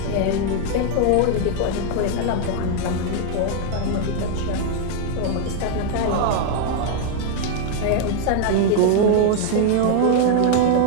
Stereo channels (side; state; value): both; different; correlation 0.00